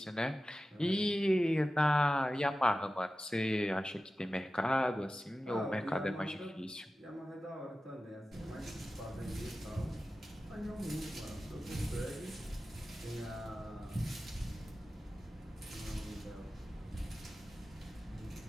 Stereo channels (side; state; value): both; normal; correlation 0.95